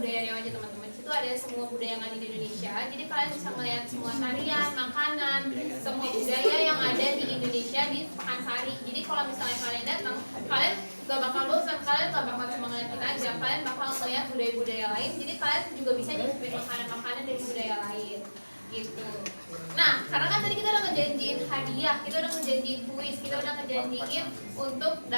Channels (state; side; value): inverted; both; correlation -1.00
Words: Riau aja teman-teman. Di situ ada semua budaya yang ada di Indonesia. Jadi kalian bisa melihat semua tarian, makanan, semua budaya yang ada di Indonesia di Pekansari. Jadi kalau misalnya kalian datang, kalian gak bakal bosan, kalian gak bakal cuma ngeliat kita aja, kalian bakal melihat budaya-budaya lain. Jadi kalian juga bisa nyicipin makanan-makanan dari budaya lain. Gitu. Nah, karena kan tadi kita udah ngejanjiin hadiah, kita udah ngejanjiin kuis, kita udah ngejanjiin untuk